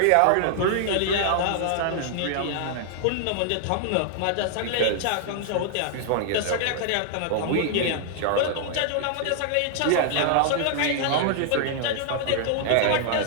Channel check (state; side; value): different; both; correlation 0.00